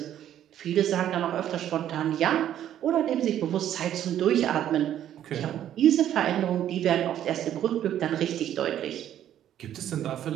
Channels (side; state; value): left; quieter; 11.1 dB